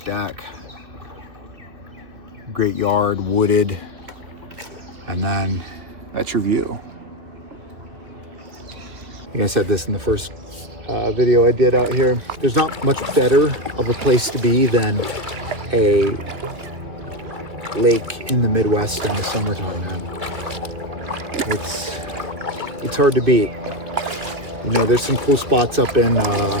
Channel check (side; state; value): left; late; 2.8 ms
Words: deck. Great yard, wooded, and then that's your view. I think I said this in the first video I did out here. There's not much better of a place to be than a lake in the Midwest in the summertime, man. It's hard to beat. You know, there's some cool spots up in